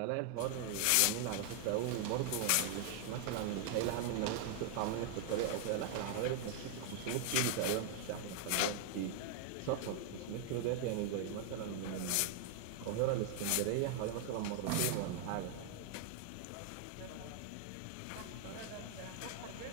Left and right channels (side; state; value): both; different; correlation 0.00